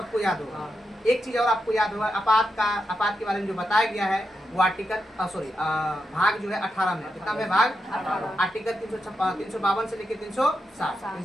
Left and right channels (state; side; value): normal; both; correlation 0.86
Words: याद होगा। एक चीज और आपको याद होगा, आपात के बारे में जो बताया गया है वो आर्टिकल भाग जो है 18 में। कितना में? भाग आर्टिकल 352 से लेकर 360,